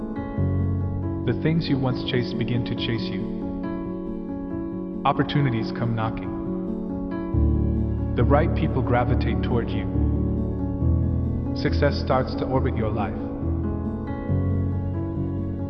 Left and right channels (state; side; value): identical; both; correlation 1.00